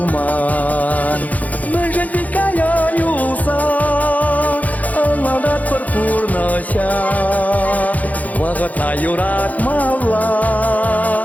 Мәжен дикая юса, алладат пір-пұрнаша, вағыта юрат мала,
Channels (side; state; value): right; late; 0.076 ms